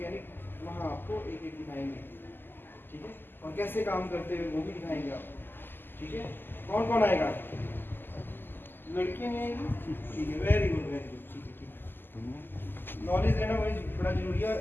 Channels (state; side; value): late; right; 0.095 ms